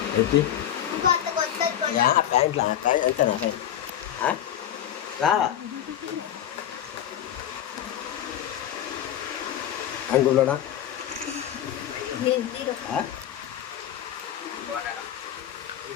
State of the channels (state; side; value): quieter; right; 10.8 dB